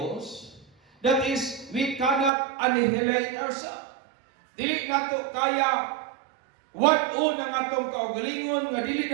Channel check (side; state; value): left; drops out; at 2.3 s